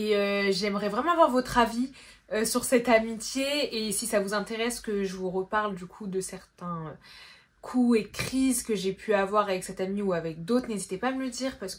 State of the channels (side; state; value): both; identical; correlation 1.00